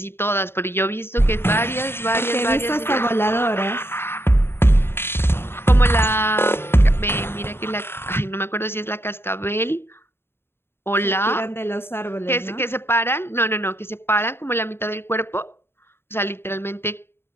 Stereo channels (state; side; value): late; right; 0.11 ms